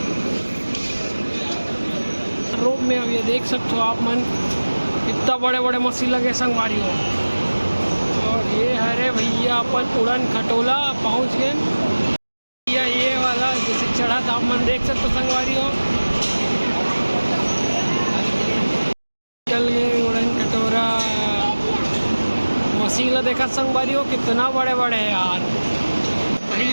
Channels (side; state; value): both; inverted; correlation -1.00